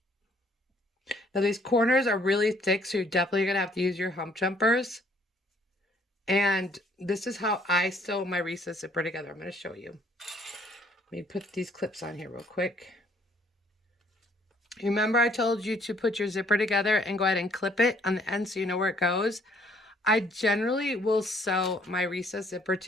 Now these corners are really thick, so you're definitely going to have to use your hump jumpers. And this is how I sew my recessed zipper together. I'm going to show you. Let me put these clips on here real quick. Remember I told you to put your zipper together and go ahead and clip it on the end so you know where it goes. I generally will sew my recessed zipper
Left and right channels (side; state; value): both; normal; correlation 0.63